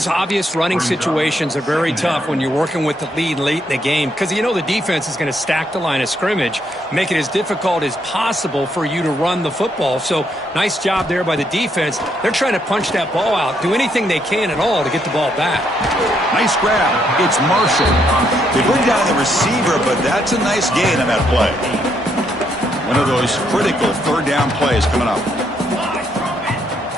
obvious running situations are very tough when you're working with the lead late in the game, because you know the defense is going to stack the line of scrimmage, make it as difficult as possible for you to run the football. So nice job there by the defense. They're trying to punch that ball out, do anything they can at all to get the ball back. Nice grab. It's Marshall. They bring down the receiver, but that's a nice gain on that play. One of those critical third down plays coming up.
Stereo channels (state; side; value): normal; both; correlation 0.74